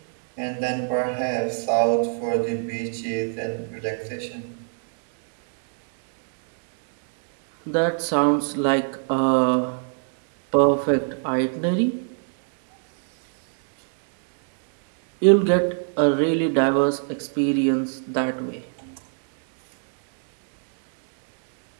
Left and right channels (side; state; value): left; silent; 61 dB below the other